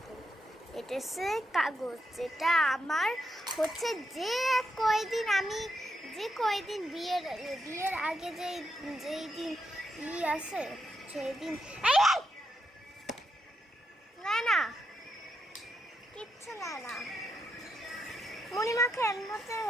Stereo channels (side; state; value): both; normal; correlation 0.82